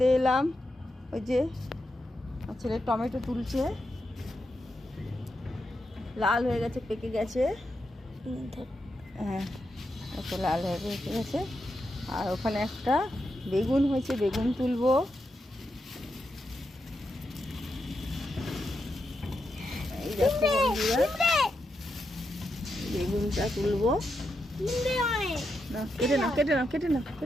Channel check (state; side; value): normal; both; correlation 0.85